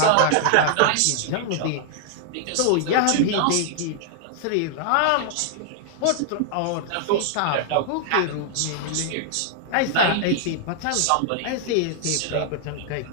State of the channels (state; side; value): different; both; correlation -0.01